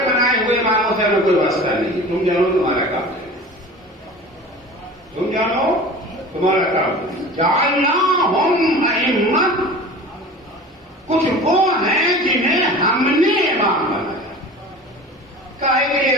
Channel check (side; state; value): both; normal; correlation 0.38